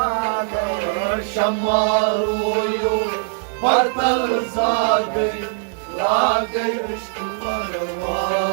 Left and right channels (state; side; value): silent; left; digital silence